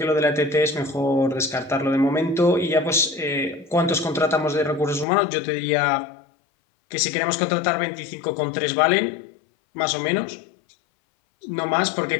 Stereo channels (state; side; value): drops out; right; at 5.1 s